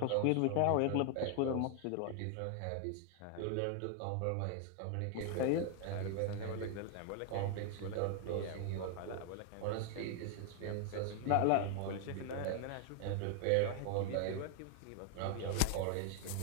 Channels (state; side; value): different; both; correlation 0.00